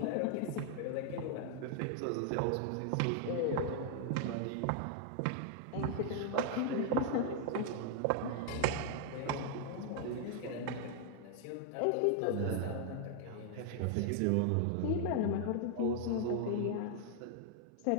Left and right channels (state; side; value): different; both; correlation -0.01